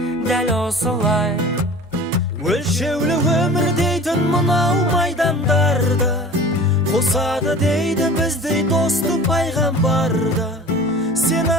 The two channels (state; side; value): normal; both; correlation 0.40